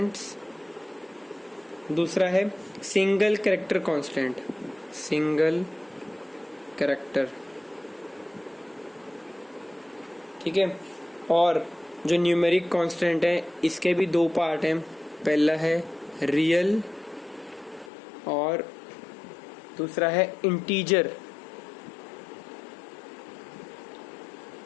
दूसरा है single character constant, single character. ठीक है, और जो न्यूमेरिक कांस्टेंट है इसके भी दो पार्ट हैं। पहला है रियल और दूसरा है इंटीजर।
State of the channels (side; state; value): right; drops out; at 17.9 s